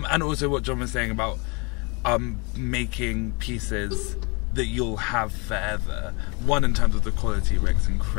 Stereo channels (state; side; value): quieter; right; 30.3 dB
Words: also what John was saying about making pieces that you'll have forever. One, in terms of the quality, Rick's